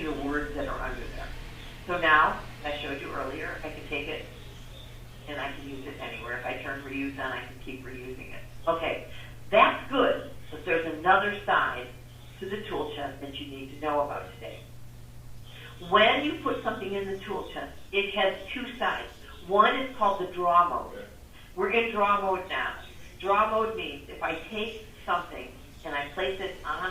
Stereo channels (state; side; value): identical; both; correlation 1.00